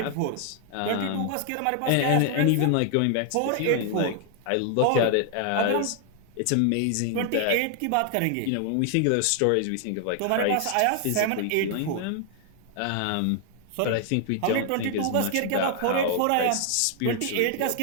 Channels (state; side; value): different; both; correlation 0.00